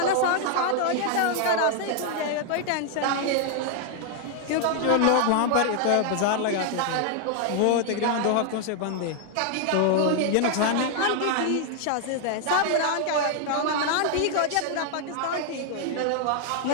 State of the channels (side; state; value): both; different; correlation 0.00